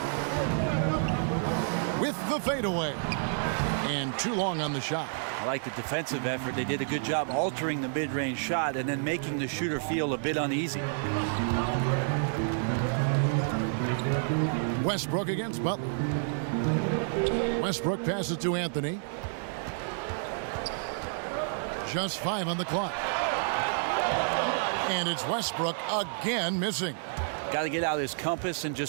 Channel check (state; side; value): silent; left; digital silence